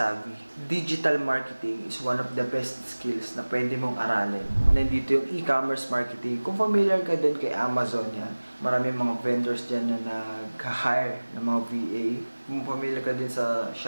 digital marketing is one of the best skills na pwede mong aralin. Nandito yung e-commerce marketing. Kung familiar ka din kay Amazon yan, maraming mga vendors dyan na nag-hire ng mga VA. Kung familiar ka din sa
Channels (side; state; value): both; inverted; correlation -1.00